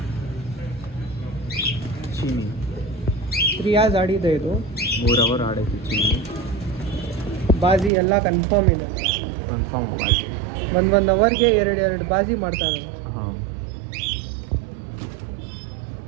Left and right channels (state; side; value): drops out; left; at 7.9 s